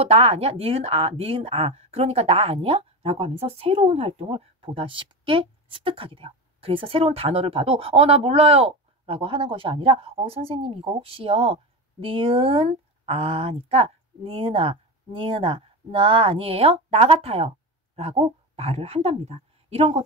나 아니야? 니은 아, 니은 아. 그러니까 나 아니야? 라고 하면서 새로운 활동을 보다 쉽게 습득하게 돼요. 그래서 새로운 단어를 봐도 나 몰라요. 라고 하는 것이 아니라 선생님 이거 혹시요. 니은 아니까 니은아, 니은아, 나 아니에요? 나 같아요. 라고 말을 한답니다. 이런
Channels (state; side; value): normal; both; correlation 0.20